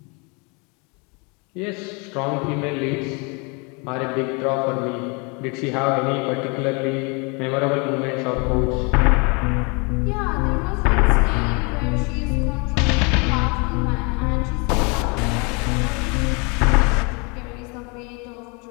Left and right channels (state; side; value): quieter; right; 31.3 dB